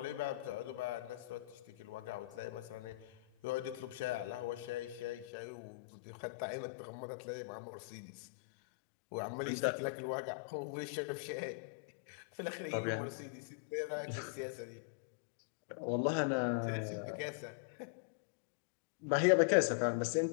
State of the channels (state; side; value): drops out; right; at 5.2 s